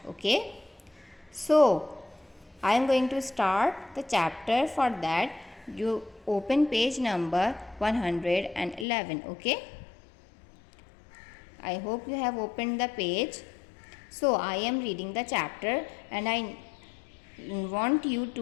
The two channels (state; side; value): drops out; right; at 8.8 s